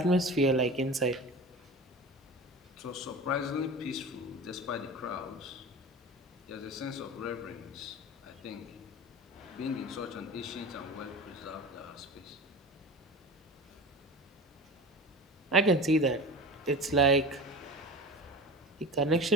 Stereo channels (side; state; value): both; normal; correlation 0.33